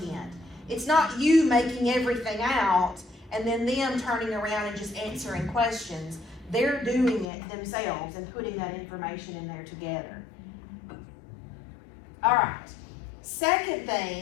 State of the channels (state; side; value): drops out; right; at 7.2 s